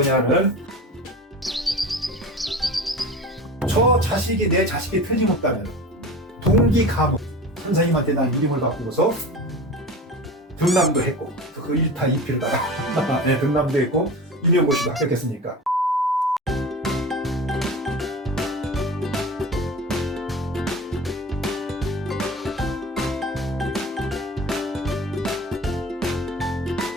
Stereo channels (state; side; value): normal; both; correlation 0.34